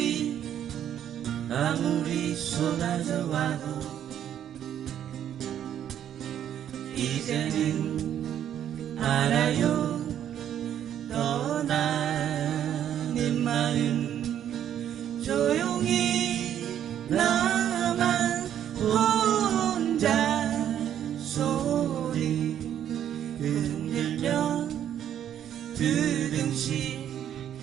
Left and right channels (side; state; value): left; quieter; 10.1 dB